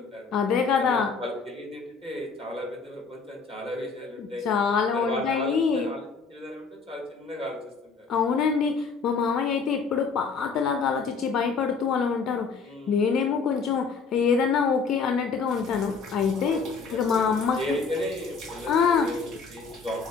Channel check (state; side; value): quieter; right; 5.1 dB